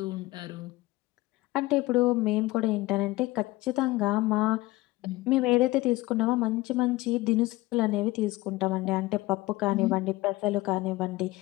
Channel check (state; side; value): quieter; right; 19.4 dB